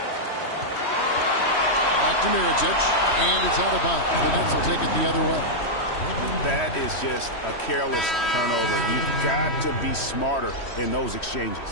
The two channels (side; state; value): right; late; 3.1 ms